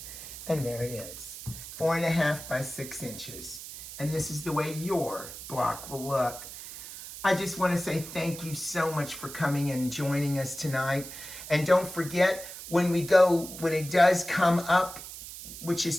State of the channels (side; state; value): right; noise; hiss, 12 dB below the sound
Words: And there it is. 4.5 by 6 inches. And this is the way your block will look. I just want to say thank you so much for coming and joining us tonight. And don't forget, when it does come up, which is